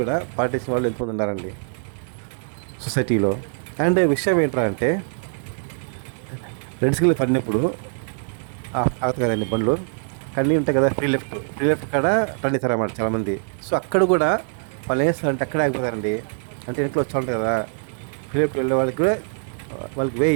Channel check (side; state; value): left; silent; 63 dB below the other